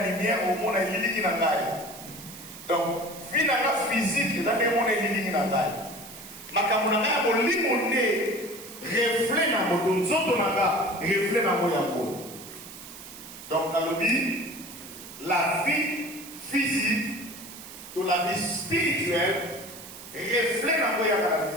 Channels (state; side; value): noise; right; hiss, 15 dB below the sound